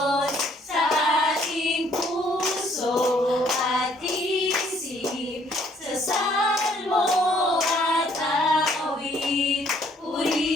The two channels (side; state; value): both; normal; correlation 0.64